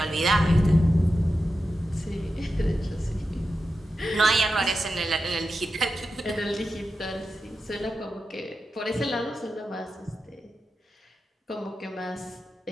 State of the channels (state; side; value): normal; both; correlation 0.91